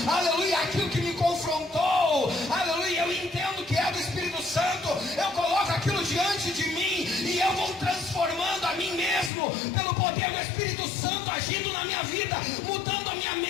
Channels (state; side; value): drops out; right; at 9.3 s